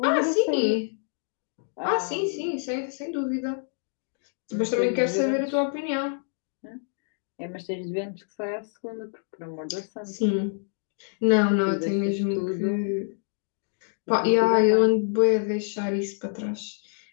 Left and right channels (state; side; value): silent; right; digital silence